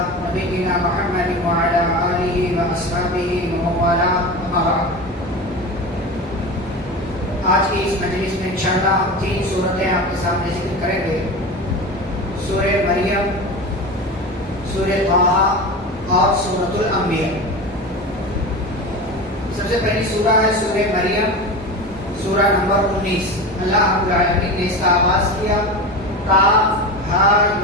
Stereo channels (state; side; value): normal; both; correlation 0.27